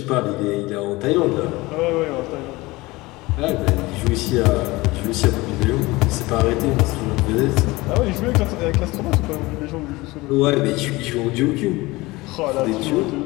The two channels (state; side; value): quieter; right; 21.3 dB